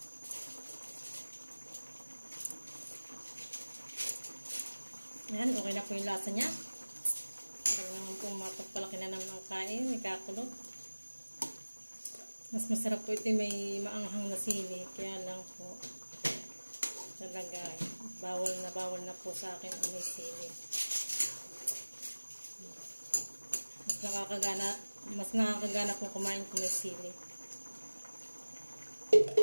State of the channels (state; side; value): inverted; both; correlation -1.00